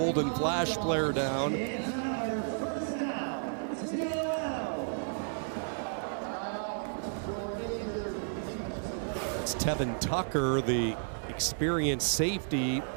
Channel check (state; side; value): silent; left; digital silence